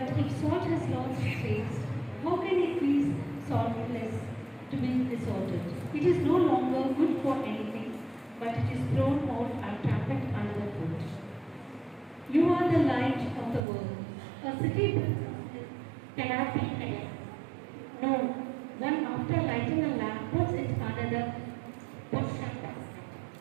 if salt has lost its taste, how can it be saltless to be resorted? It is no longer good for anything, but it is thrown out and trampled under the foot. You are the light of the world. A city cannot be hidden. No, one after lighting a lamp puts it under the bush and basket.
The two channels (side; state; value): left; drops out; at 13.6 s